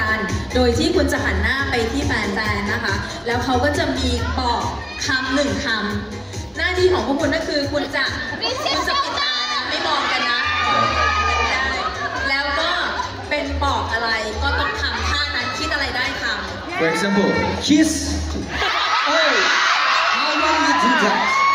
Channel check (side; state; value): both; identical; correlation 1.00